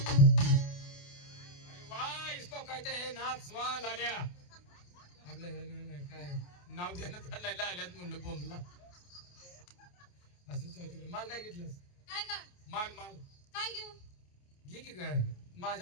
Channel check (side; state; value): right; late; 28 ms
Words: वाह इसको कहते हैं नाच वा लाल्या आपलं काय नाव देण्यात आलेलं आल्यात म्हणलं बोंबला असं चौथी माल काय घेतलंस काय का माल माल काय घेऊ घे की काय